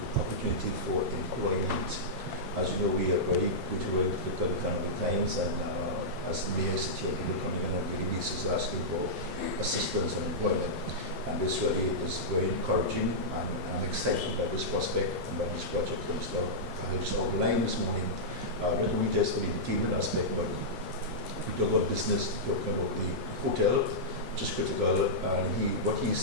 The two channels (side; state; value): both; normal; correlation -0.12